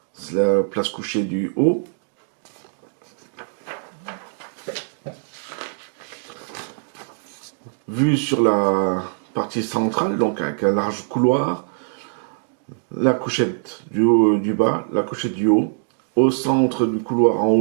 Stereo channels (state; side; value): silent; left; digital silence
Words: C'est la place couchée du haut. Vue sur la partie centrale, donc avec un large couloir. La couchette du haut, du bas, la couchette du haut. Au centre du couloir en